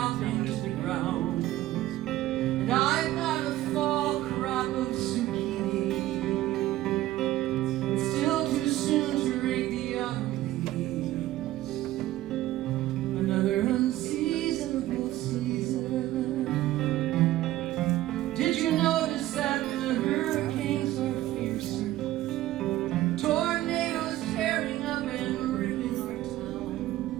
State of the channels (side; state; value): left; quieter; 15.2 dB